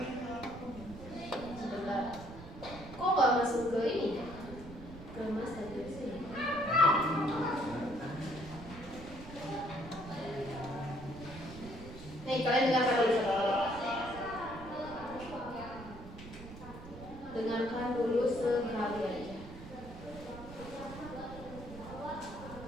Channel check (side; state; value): right; noise; rumble, 14 dB below the sound